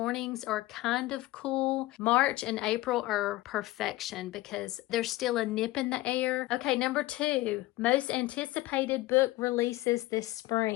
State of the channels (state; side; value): quieter; right; 18.1 dB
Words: are kind of cool. March and April are perfection because there's still a nip in the air. Okay, number 2, most anticipated book releases this